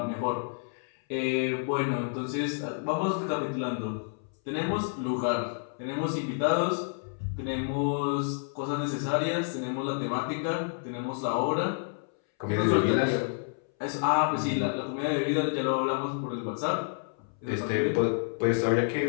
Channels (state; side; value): silent; right; 58 dB below the other